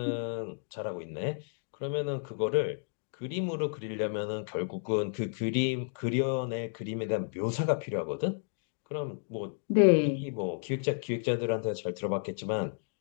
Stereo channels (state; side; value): silent; right; digital silence